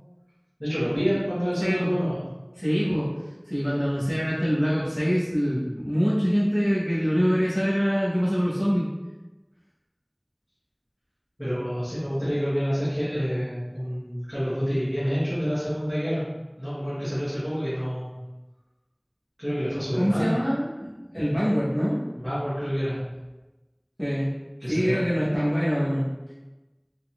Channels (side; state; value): both; identical; correlation 1.00